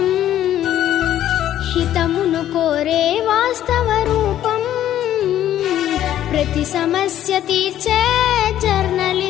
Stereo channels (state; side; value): quieter; right; 11.9 dB